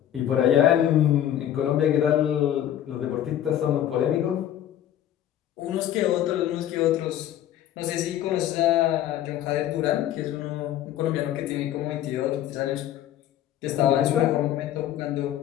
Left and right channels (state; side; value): quieter; right; 11.5 dB